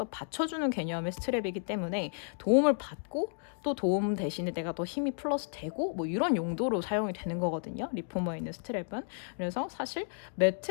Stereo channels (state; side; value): silent; right; digital silence